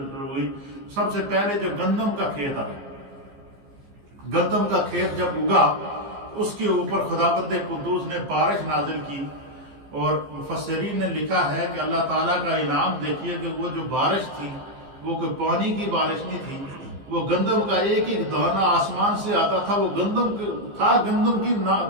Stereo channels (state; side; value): late; left; 15 ms